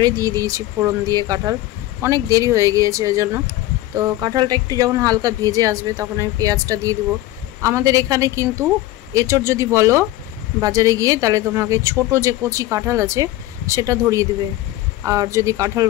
দিয়ে দিয়েছি ফোড়ন দিয়ে কাঁঠাল, অনেক দেরি হয়ে গিয়েছে ওই জন্য। তো কাঁঠালটা একটু যখন হালকা ভেজে আসবে তখন আমি পেঁয়াজটা দিয়ে দেবো। আমাদের এখানে কিন্তু এঁচড় যদি বলো বাজারে গিয়ে, তাহলে তোমাকে ছোট যে কচি কাঁঠাল আছে সেটা ধরিয়ে দেবে। আর যদি কাঁঠাল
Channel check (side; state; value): right; quieter; 15.9 dB